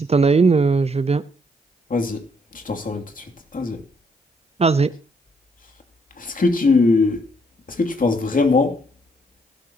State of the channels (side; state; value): both; normal; correlation 0.70